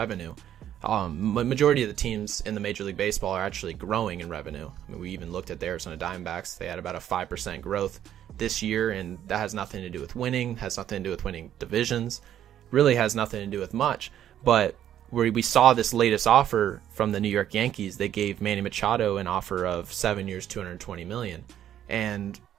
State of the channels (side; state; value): left; quieter; 10.9 dB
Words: Majority of the teams in the Major League Baseball are actually growing in revenue. I mean, we even looked at the Arizona Diamondbacks. They had about a 5% growth this year, and that has nothing to do with winning, has nothing to do with winning divisions, really has nothing to do with much. But where we saw this latest offer from the New York Yankees, they gave Manny Machado an offer of 7 years, $220 million. And